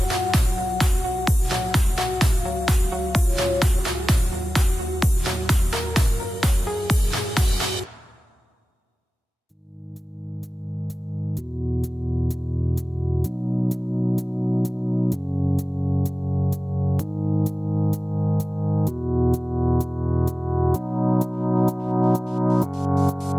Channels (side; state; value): both; normal; correlation 0.95